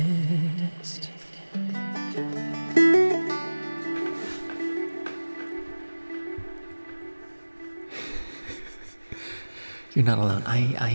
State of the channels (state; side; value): inverted; both; correlation -1.00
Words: You're not alone. I